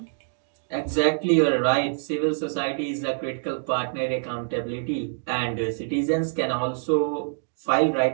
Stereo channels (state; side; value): silent; left; digital silence